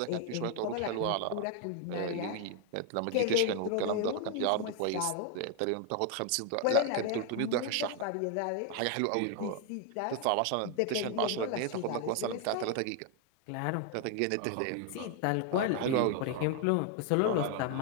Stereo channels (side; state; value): both; different; correlation 0.01